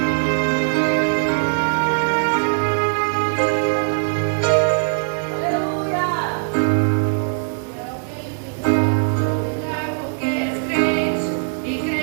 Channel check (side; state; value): left; silent; digital silence